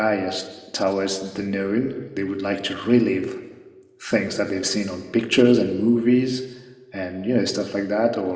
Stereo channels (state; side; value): identical; both; correlation 1.00